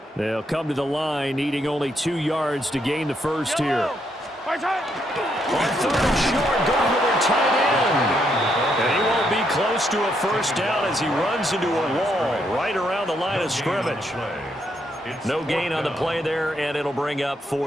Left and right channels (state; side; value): normal; both; correlation 0.76